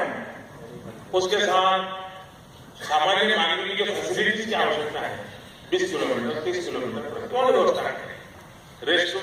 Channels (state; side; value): identical; both; correlation 1.00